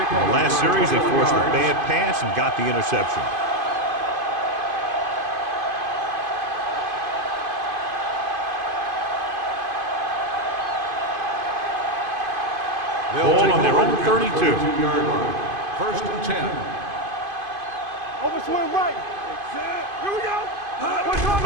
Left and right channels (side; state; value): left; late; 2.5 ms